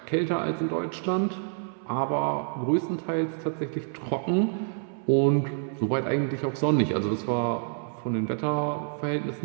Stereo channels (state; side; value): silent; left; 60 dB below the other